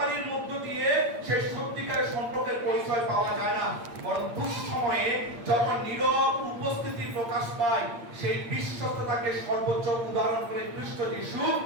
মধ্য দিয়ে সেই সত্যিকারের সম্পর্কের পরিচয় পাওয়া যায় না, বরং দুঃসময়ে যখন নীরব উপস্থিতি প্রকাশ পায়, সেই বিশ্বস্ততাকে সর্বোচ্চ উদাহরণ করে খ্রিস্ট যিশু,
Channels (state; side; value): late; left; 8.7 ms